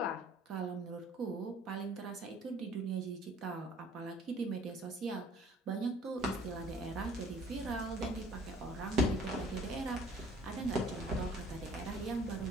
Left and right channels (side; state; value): both; normal; correlation 0.54